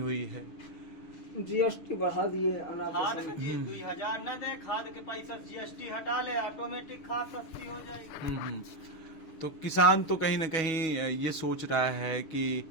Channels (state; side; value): late; right; 6.2 ms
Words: है। जीएसटी बढ़ा दिए, खाद के दिए 2000 न दे, खाद के पैसा जीएसटी हटा ले, ऑटोमेटिक खाद सस्ती हो जाएगी। तो किसान तो कहीं न कहीं ये सोच रहा है कि